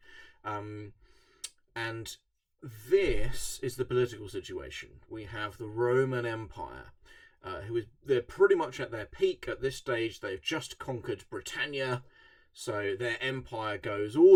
and this is the political situation. We have the Roman Empire, they're pretty much at their peak at this stage. They've just conquered Britannia, so their empire goes all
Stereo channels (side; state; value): both; identical; correlation 1.00